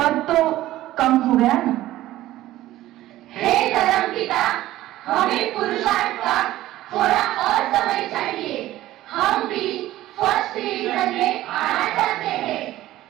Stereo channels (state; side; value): quieter; left; 15.2 dB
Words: तो कम हो गया ना? हे धर्मपिता, हमें पुरुषार्थ का थोड़ा और समय चाहिए। हम भी फर्स्ट डिवीजन में आना चाहते हैं।